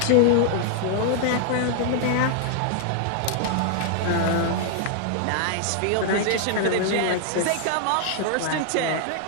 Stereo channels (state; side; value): different; both; correlation 0.00